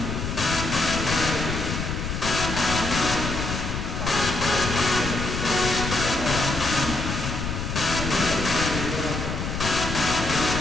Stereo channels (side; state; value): left; noise; rumble, 4 dB below the sound